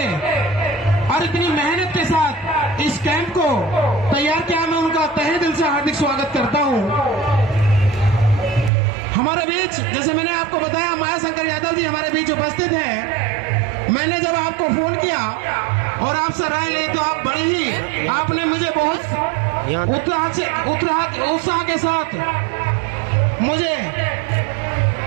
और इतनी मेहनत के साथ इस कैंप को तैयार किया, मैं उनका तहे दिल से हार्दिक स्वागत करता हूँ। हमारे बीच, जैसे मैंने आपको बताया, माया शंकर यादव जी हमारे बीच उपस्थित हैं। मैंने जब आपको फोन किया और आपसे राय ली तो आप बड़े ही, आपने मुझे बहुत उत्साह के साथ मुझे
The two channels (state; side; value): drops out; left; at 8.7 s